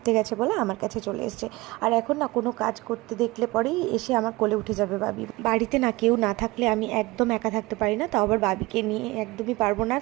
গেছে বলে আমার কাছে চলে এসছে। আর এখন না কোনো কাজ করতে দেখলে পরেই এসে আমার কোলে উঠে যাবে বাবি। বাড়িতে না কেউ না থাকলে আমি একদম একা থাকতে পারি না, তাও আবার বাবিকে নিয়ে একদমই পারবো না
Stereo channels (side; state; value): left; quieter; 21.5 dB